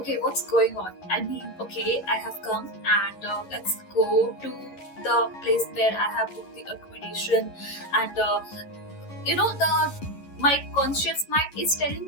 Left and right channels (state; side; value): late; right; 11 ms